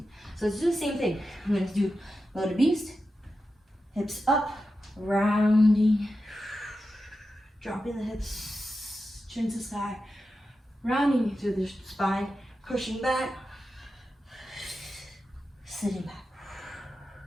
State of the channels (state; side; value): normal; both; correlation 0.91